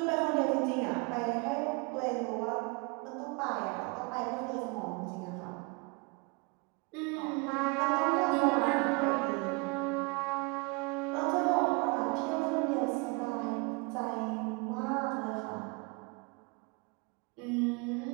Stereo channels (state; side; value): quieter; left; 30.4 dB